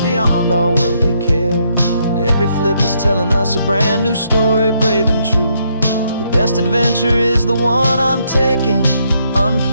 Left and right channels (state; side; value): inverted; both; correlation -0.74